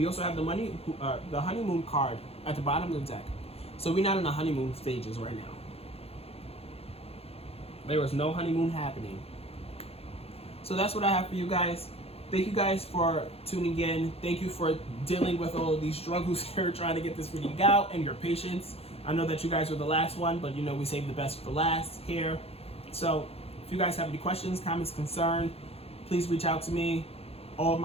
also have the honeymoon card at the bottom of the deck. So we're not in the honeymoon stages right now. There was no honeymoon happening. So that's what I have for you guys. Thank you guys for tuning in. Thank you for dealing with all of these struggles here, trying to get this reading out, and your patience. I know that you guys were the last one, but you know we saved the best for last here. So if you guys have any questions, comments, concern, please reach out to me. All of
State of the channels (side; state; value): right; late; 0.29 ms